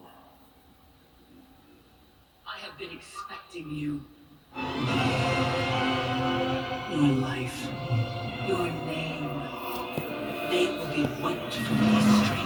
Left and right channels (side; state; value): both; identical; correlation 1.00